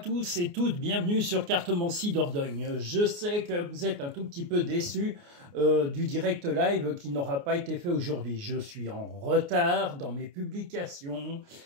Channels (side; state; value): left; late; 29 ms